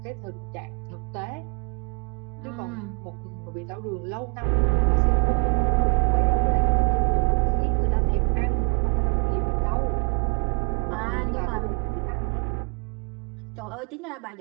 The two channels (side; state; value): left; quieter; 37.5 dB